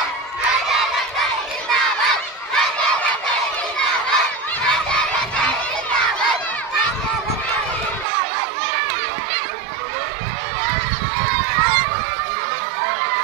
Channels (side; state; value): left; drops out; at 8.1 s